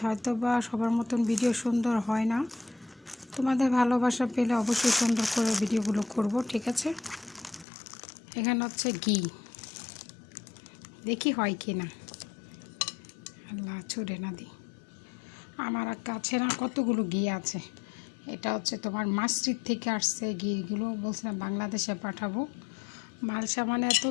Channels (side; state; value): right; drops out; at 7.7 s